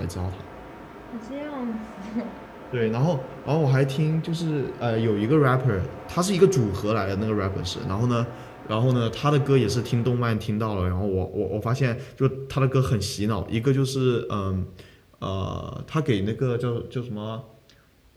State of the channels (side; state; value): both; identical; correlation 1.00